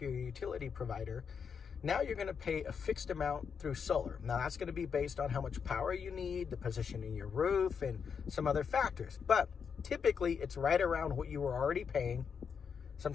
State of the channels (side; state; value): right; quieter; 6.5 dB